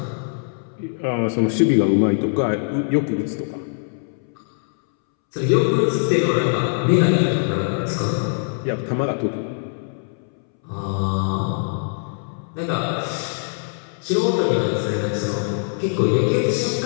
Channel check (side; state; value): right; silent; 64 dB below the other